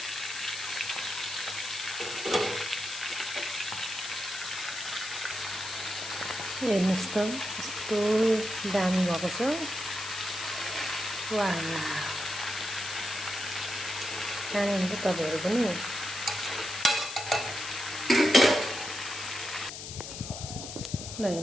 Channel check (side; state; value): left; noise; hiss, 8 dB below the sound